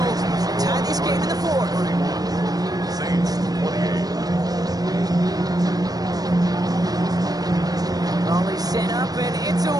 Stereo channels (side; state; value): left; late; 0.18 ms